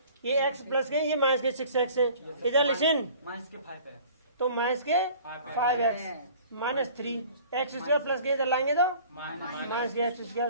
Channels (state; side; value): inverted; both; correlation -0.48